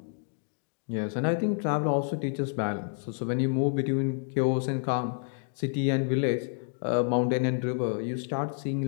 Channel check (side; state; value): right; silent; digital silence